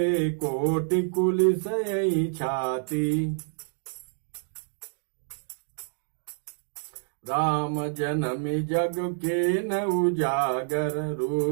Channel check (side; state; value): left; silent; digital silence